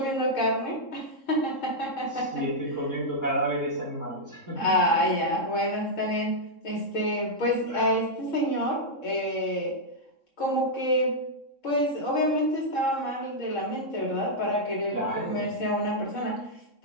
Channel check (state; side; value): late; right; 3.7 ms